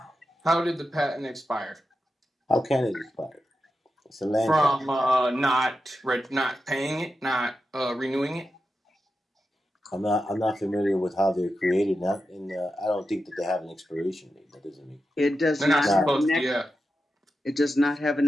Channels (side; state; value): both; normal; correlation 0.90